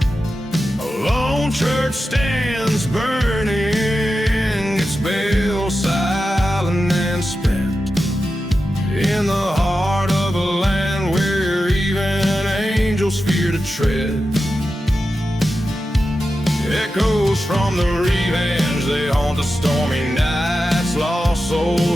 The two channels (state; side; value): normal; both; correlation 0.91